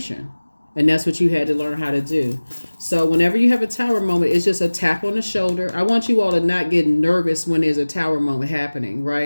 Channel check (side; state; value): both; inverted; correlation -1.00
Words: And that's what you had to learn how to do. So whenever you have a Tower moment, it's just a tap on the shoulder. I want you all to not get nervous when there's a Tower moment happening,